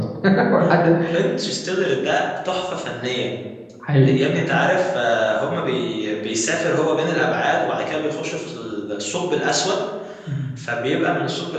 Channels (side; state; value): both; identical; correlation 1.00